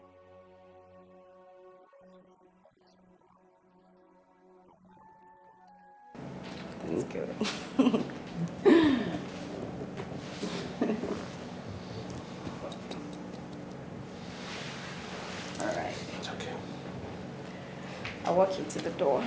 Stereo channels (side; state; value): both; identical; correlation 1.00